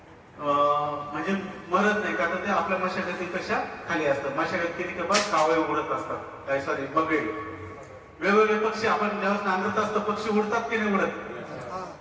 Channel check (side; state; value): both; identical; correlation 1.00